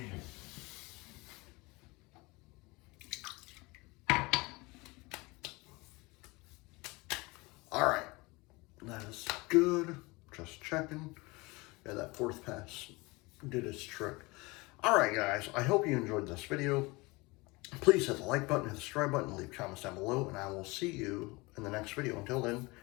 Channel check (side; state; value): right; quieter; 24.3 dB